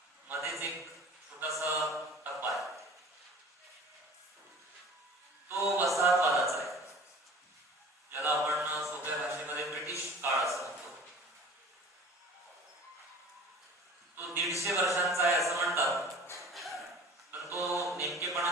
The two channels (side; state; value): both; normal; correlation 0.44